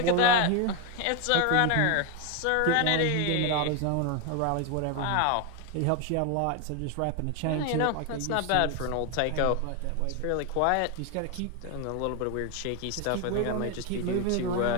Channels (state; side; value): different; both; correlation 0.01